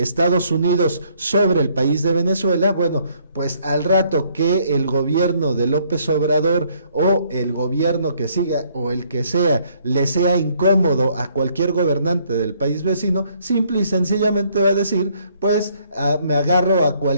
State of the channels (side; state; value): both; inverted; correlation -0.66